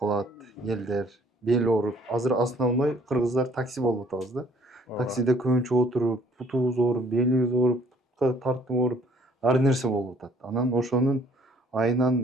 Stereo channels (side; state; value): both; normal; correlation 0.59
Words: элдер бели ооруп. Азыр основной кыргыздар такси болуп атабыз да. Таксиде көбүнчө отуруп, бутубуз ооруп, белибиз ооруп, тартып ооруп, ар нерсе болуп атат. Анан ошонун